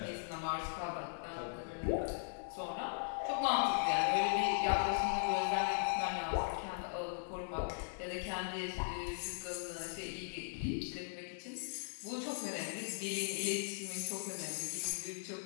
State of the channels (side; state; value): right; silent; digital silence